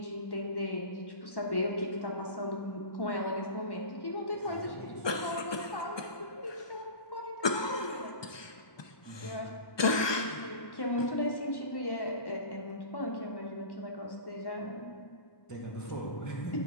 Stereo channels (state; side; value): late; right; 1.2 ms